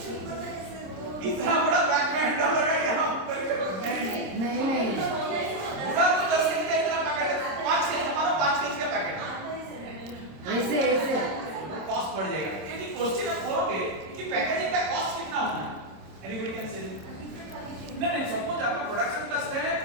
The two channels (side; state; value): left; late; 26 ms